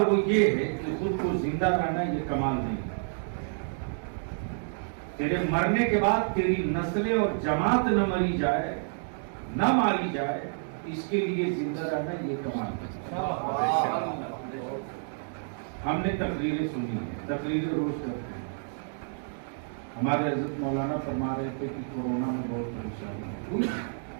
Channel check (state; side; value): silent; left; digital silence